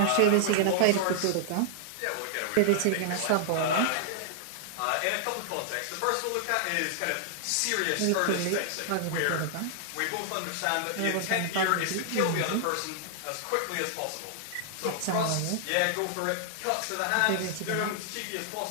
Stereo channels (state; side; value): different; both; correlation -0.01